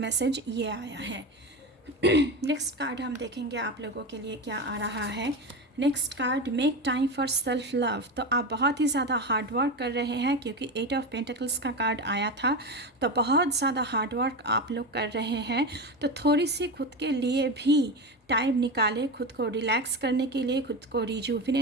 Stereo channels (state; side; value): normal; both; correlation 0.21